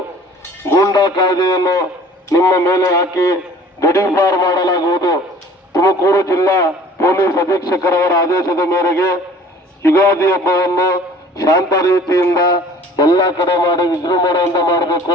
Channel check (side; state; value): both; normal; correlation 0.49